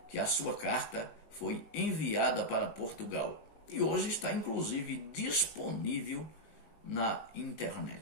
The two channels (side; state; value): right; late; 19 ms